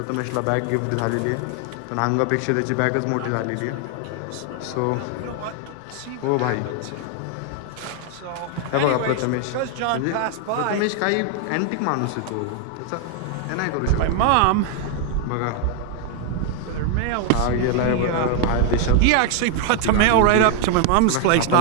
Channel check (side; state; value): both; different; correlation 0.00